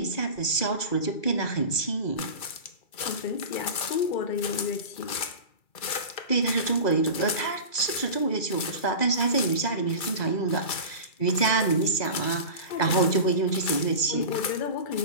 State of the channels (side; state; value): right; late; 2.3 ms